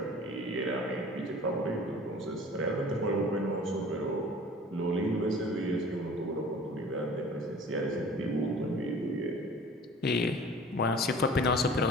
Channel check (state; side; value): normal; both; correlation 0.45